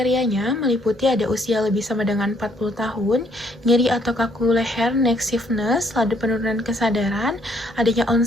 meliputi ada usia lebih sama dengan 40 tahun, nyeri atau kaku leher, neck stiffness, laju penurunan kesadaran, adanya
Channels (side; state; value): both; normal; correlation 0.67